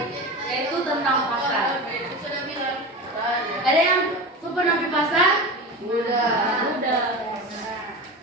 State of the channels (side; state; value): both; normal; correlation 0.27